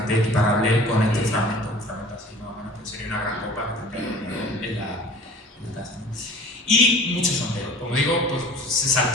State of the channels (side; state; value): both; normal; correlation 0.45